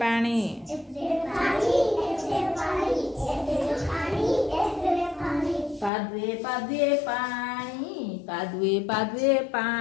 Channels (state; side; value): drops out; right; at 5.9 s